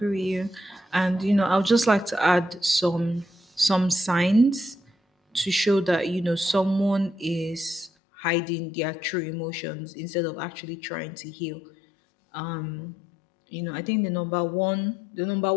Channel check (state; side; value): drops out; right; at 7.9 s